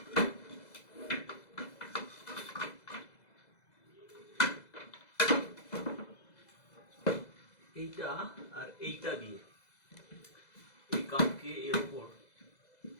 এইটা আর এইটা দিয়ে এই কাঠকে এর উপর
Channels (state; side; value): late; right; 2.0 ms